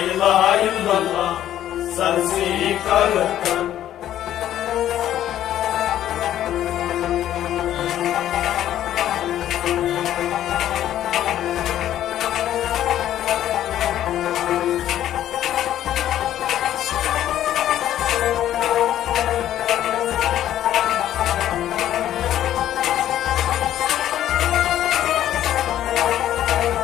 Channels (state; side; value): quieter; right; 11.9 dB